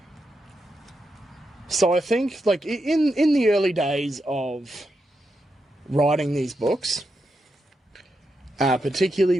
So I think, like, in the early days of writing these books, particularly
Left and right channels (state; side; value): normal; both; correlation 0.85